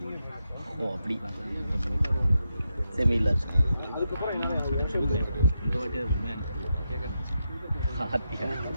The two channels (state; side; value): inverted; both; correlation -0.85